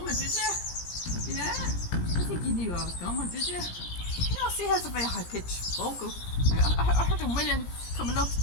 did you? Yeah? I think you knew I was coming, did you? You know, see, has a very high-pitched vocal. I heard him winning coming up.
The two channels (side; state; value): right; late; 17 ms